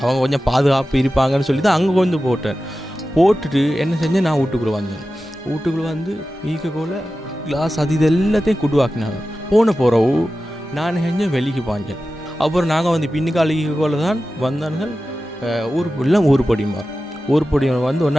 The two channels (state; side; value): normal; both; correlation 0.94